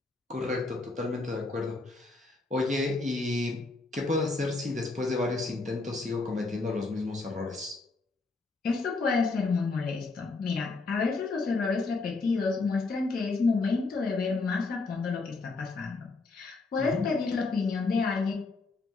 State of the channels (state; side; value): quieter; right; 3.7 dB